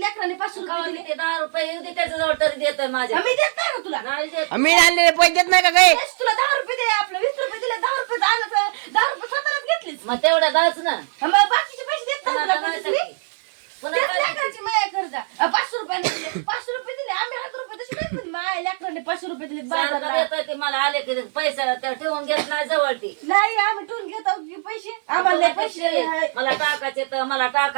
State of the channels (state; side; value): silent; left; 59 dB below the other